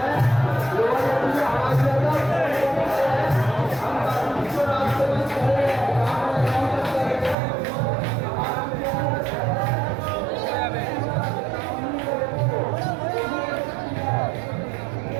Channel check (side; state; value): left; drops out; at 7.4 s